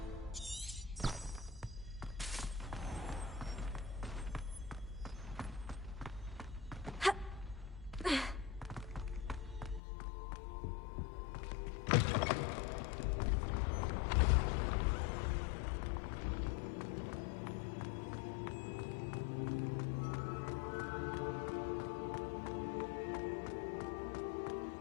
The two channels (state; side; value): drops out; right; at 9.8 s